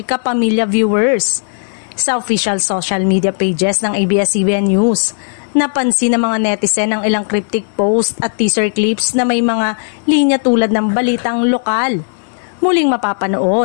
viewers. Sa official social media pages ng ABS-CBN News, napansin ng mga netizen ang ilang cryptic post at teaser clips na may mga linya tulad ng balitang lokal. Muling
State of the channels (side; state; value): right; silent; digital silence